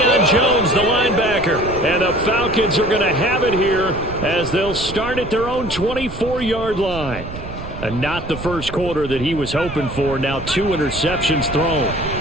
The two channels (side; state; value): right; noise; rumble, 11 dB below the sound